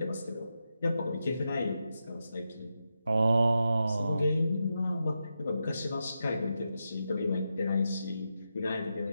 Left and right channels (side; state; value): both; inverted; correlation -0.87